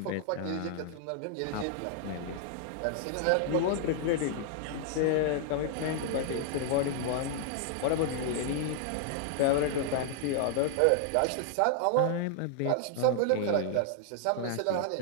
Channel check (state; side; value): different; both; correlation 0.00